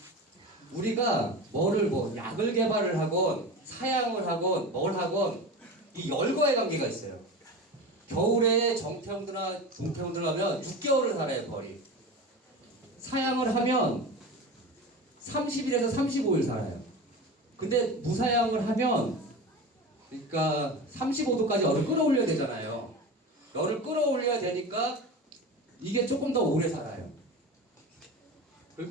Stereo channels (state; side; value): normal; both; correlation 0.29